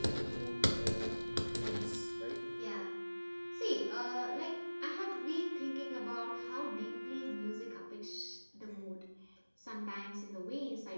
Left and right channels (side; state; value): both; inverted; correlation -1.00